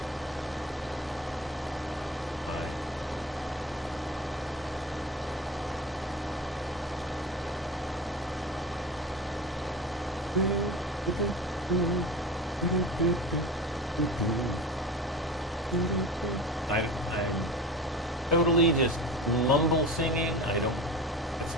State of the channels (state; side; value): normal; both; correlation 0.32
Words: I'm totally just mumble singing. It's